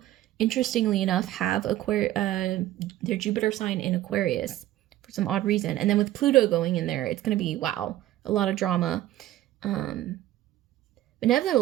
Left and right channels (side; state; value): left; quieter; 14.4 dB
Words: interestingly enough, have their Jupiter sign in Aquarius for some odd reason. And then with Pluto going in there, it's going to be, wow, a lot of drama. But